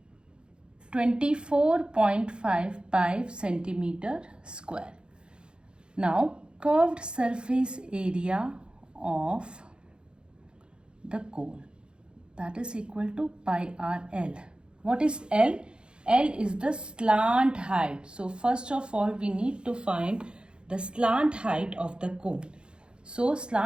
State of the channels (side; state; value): left; late; 0.053 ms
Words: 24.55 centimeter square. Now curved surface area of the cone, that is equal to pi r L. What is L? L is the slant height. So first of all we need to find the slant height of the cone. So